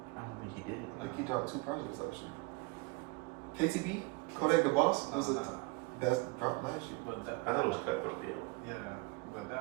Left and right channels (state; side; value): quieter; left; 24.6 dB